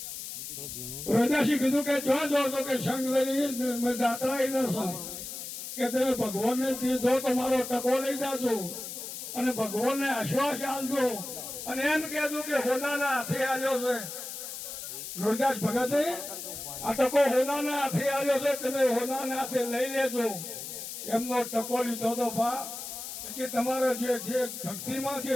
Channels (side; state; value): left; noise; hiss, 8 dB below the sound